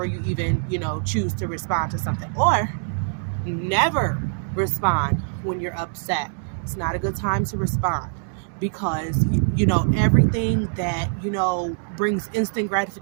you even, choose to respond to something. Or never respond when you're upset. It's not a good time to respond because everything that brings instant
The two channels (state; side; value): silent; left; digital silence